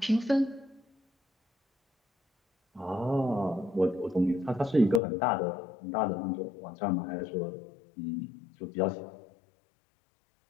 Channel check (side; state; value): right; drops out; at 5.0 s